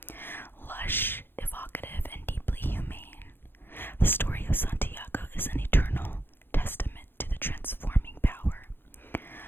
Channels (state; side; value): late; right; 0.10 ms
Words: Lush, evocative, and deeply humane, the story of Santiago is an eternal testament to the transforming power